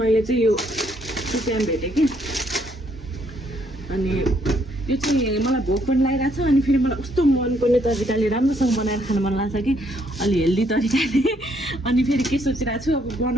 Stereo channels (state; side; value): normal; both; correlation 0.70